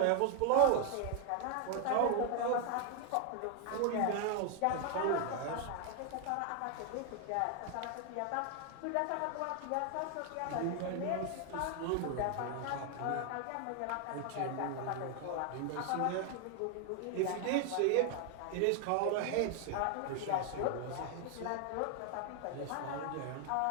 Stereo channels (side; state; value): both; different; correlation 0.00